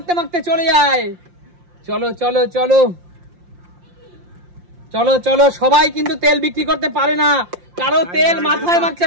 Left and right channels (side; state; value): left; late; 5.7 ms